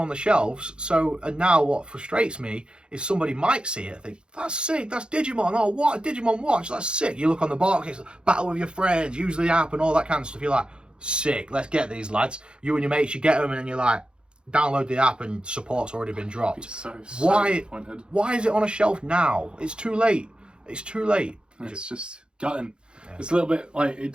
the shelves. So, and now what frustrates me is somebody might see it and think, that's sick, that's Digimon. Oh, what a Digimon watch, that's sick. You look on the box, it's battle with your friends, use the app and all that kind of stuff. You're like, sick, let's get these lads. You and your mates, you get them and then you're like, download the app and support's already been dropped. So disappointed. Why is it on a shelf now? It's too late. It's too late. It's just gutting. Yeah. It's a little bit like, it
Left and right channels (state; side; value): late; left; 0.052 ms